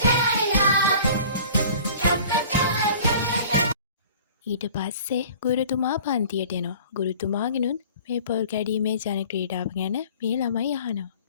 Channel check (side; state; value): both; inverted; correlation -0.46